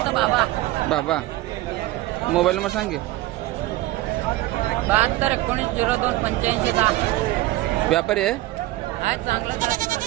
बाबा। बाबा मोबाईल नंबर सांग की। 7219028510। व्यापारी आहे?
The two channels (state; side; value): quieter; left; 17.3 dB